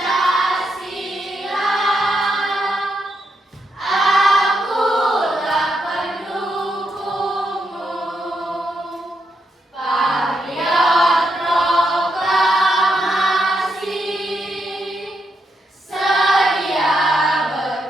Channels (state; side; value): normal; both; correlation 0.81